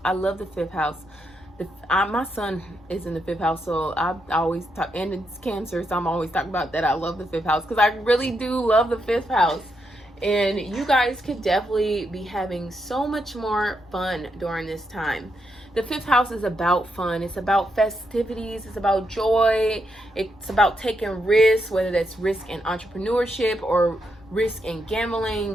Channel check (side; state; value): both; normal; correlation 0.81